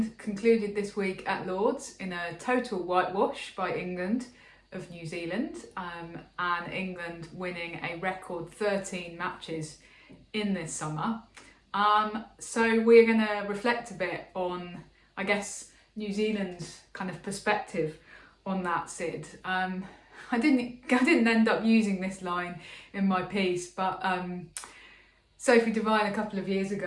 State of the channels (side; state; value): both; identical; correlation 1.00